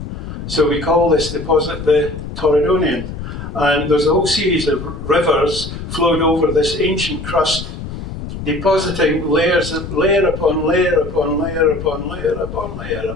so we call this deposit the Torridonian. And there's a whole series of rivers flowed over this ancient crust, depositing layer upon layer upon layer upon layer upon layer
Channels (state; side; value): noise; left; rumble, 9 dB below the sound